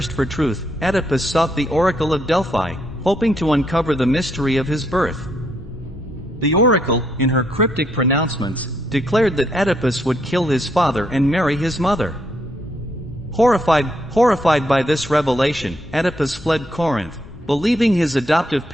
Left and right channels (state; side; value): normal; both; correlation 0.75